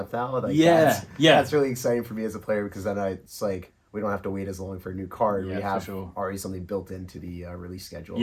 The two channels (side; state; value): both; identical; correlation 1.00